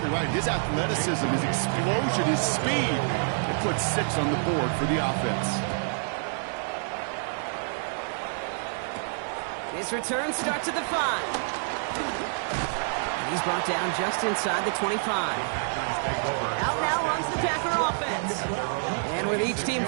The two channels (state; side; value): silent; left; digital silence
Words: right. His athleticism, his explosion, his speed, it puts 6 on the board for the offense. His return starts at the 5. And he's brought down just inside the 25. Out now runs the Packer offense. And with each team